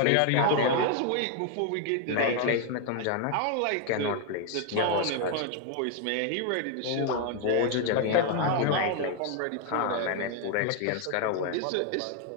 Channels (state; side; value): different; both; correlation 0.00